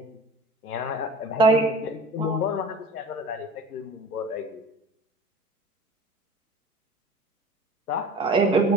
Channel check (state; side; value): normal; both; correlation 0.42